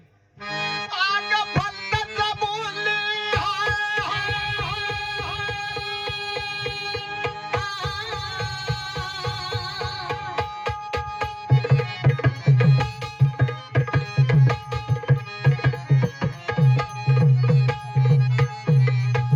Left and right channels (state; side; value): identical; both; correlation 1.00